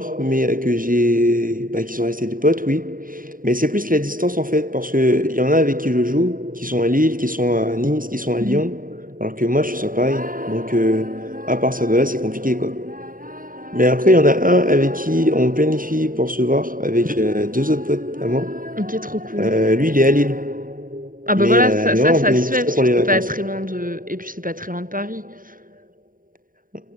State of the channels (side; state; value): left; late; 0.40 ms